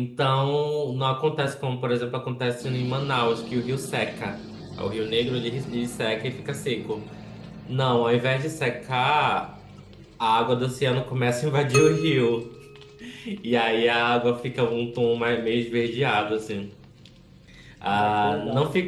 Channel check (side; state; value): both; identical; correlation 1.00